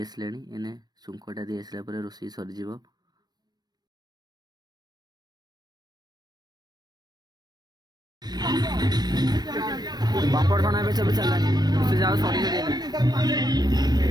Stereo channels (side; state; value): left; late; 0.19 ms